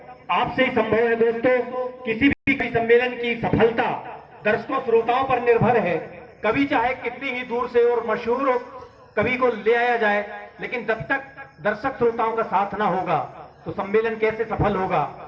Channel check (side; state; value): both; identical; correlation 1.00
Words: आपसे ही संभव है दोस्तों। किसी भी कवि सम्मेलन की सफलता दर्शकों श्रोताओं पर निर्भर है। कवि चाहे कितनी ही दूर से और मशहूर कवि को ले आया जाए, लेकिन जब तक दर्शक श्रोताओं का साथ ना होगा तो सम्मेलन कैसे सफल होगा।